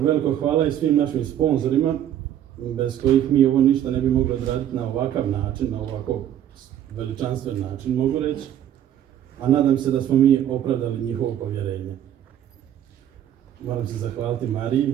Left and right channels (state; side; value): quieter; left; 10.9 dB